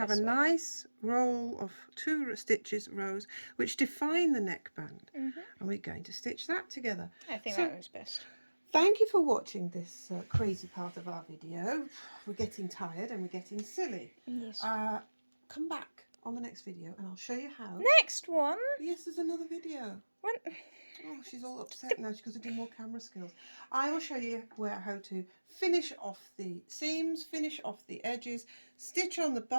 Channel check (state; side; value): inverted; both; correlation -1.00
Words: a nice roll of 2 stitches, rows, which define the neckband. And we're going to stitch that together. I think that was best. Thank you for watching this crazy part of our video. We're getting tired and we're getting silly. Yes. Come back on the next video and I'll show you how. Next one? Yes, there's another video. When? Oh, she's all upset now. She's got to do more camera skills. I will show you how to finish off the seams, finish off the edges, stitch on the